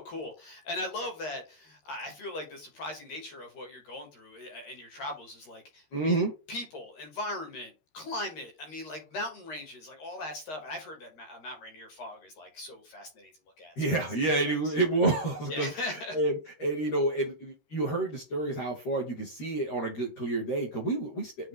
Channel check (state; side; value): late; right; 13 ms